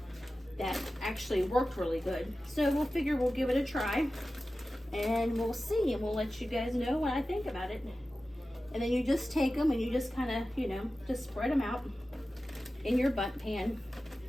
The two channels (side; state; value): both; normal; correlation 0.95